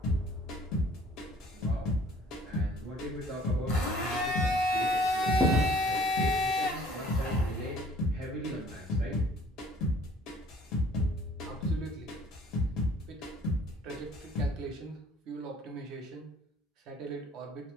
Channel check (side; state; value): both; normal; correlation 0.55